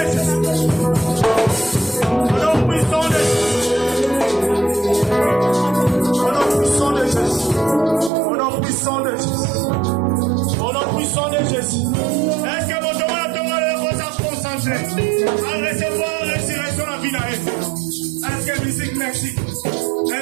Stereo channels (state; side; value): drops out; left; at 8.1 s